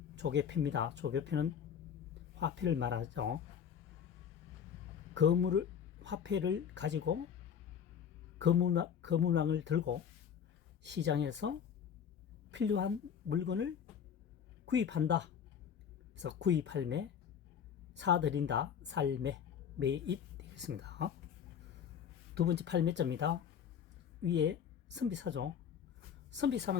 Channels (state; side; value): quieter; right; 8.0 dB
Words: 조개표입니다. 조개표는 화폐를 말하죠. 화폐를 가지고 거물망을 들고 시장에서 필요한 물건을 구입한다. 그래서 구입할매, 사들인다, 살매, 매입 되겠습니다. 두 번째 팔매자입니다. 위에 선비사죠.